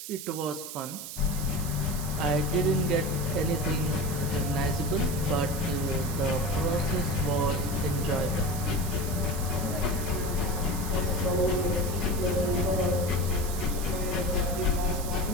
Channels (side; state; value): right; noise; hiss, 9 dB below the sound